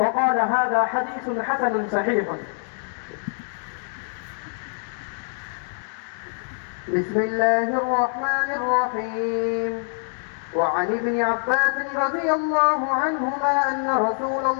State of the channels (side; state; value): right; silent; 62 dB below the other